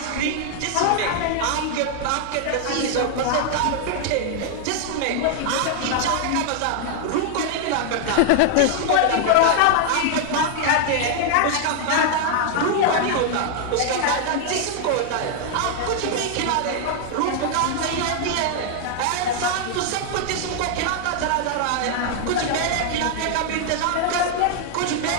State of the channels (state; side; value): different; both; correlation 0.00